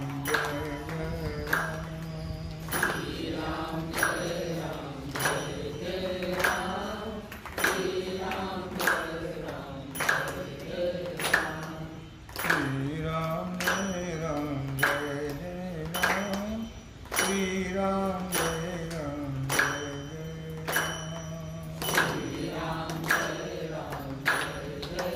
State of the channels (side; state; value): both; identical; correlation 1.00